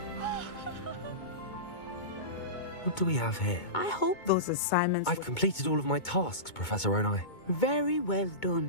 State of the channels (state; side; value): late; right; 2.2 ms